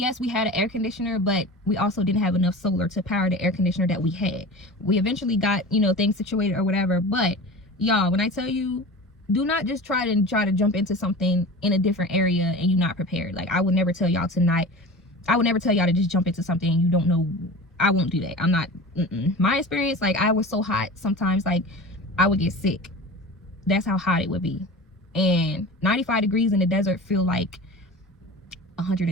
we had an air conditioner, but we also didn't have enough solar to power the air conditioner that we had. We eventually got, you know, things situated or whatever, but y'all, when I tell you, do not just try to jump into something in a different area and you're not prepared. Like, I would never tell y'all to just jump into something you don't know. I won't do that. I'm not, my experience, like, I was so hot sometimes, like, I would get sick. That's how hot it would be. And 95 degrees in the desert feel like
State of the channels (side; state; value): both; normal; correlation 0.34